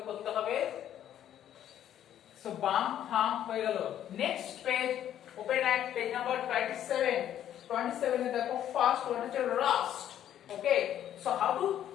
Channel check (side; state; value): right; quieter; 10.9 dB